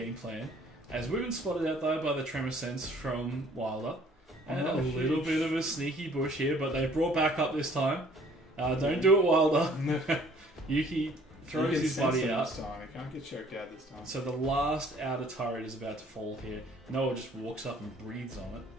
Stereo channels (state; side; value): normal; both; correlation 0.57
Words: plan. As we've been spotted out, though, by the Tremor Sense from Wilder. And a little bit of a sneaky bush here, but they've brought back up this time. Don't do it, Wilder. Yuki throws his buddy out. This time. He can't get choked out this time. So the last outer turret is about to fall here. Noah just walks up and breathes on it.